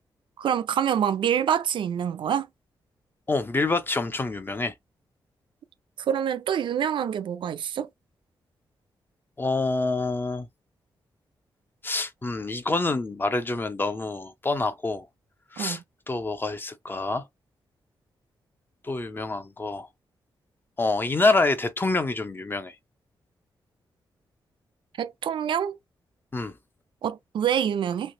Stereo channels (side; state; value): both; normal; correlation 0.56